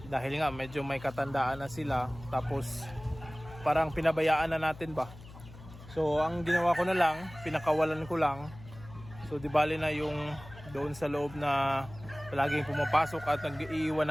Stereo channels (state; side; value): noise; left; hum, 17 dB below the sound